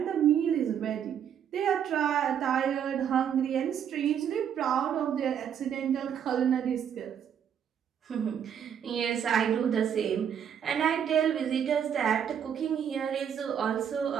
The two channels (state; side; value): quieter; left; 8.6 dB